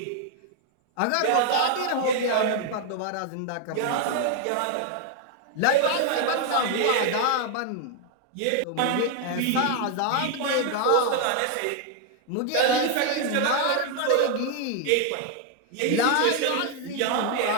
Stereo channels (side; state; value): both; different; correlation 0.00